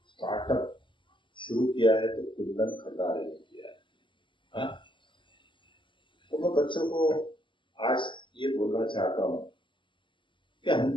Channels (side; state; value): right; late; 0.24 ms